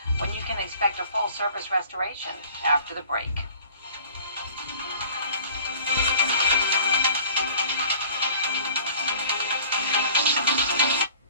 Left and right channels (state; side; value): inverted; both; correlation -0.50